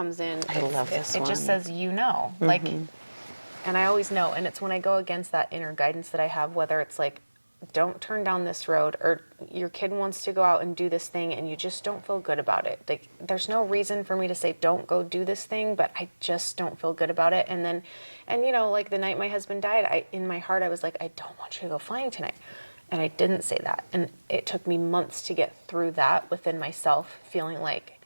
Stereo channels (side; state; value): both; inverted; correlation -1.00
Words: in. I love this one. It just says, like, And I always know, and it's when I go against that inner guidance that I have, whether it's like, don't turn down this road, or your kid wants to go out and do this thing and you just don't feel good about it. Like, there's no reason for me to say, don't go do this thing, but I just don't feel good about it. And then, and you know, like the night my husband died, in my heart, I was like, I don't want you to go flying tonight. And I didn't say that. And it took me months to get through that within myself, feeling like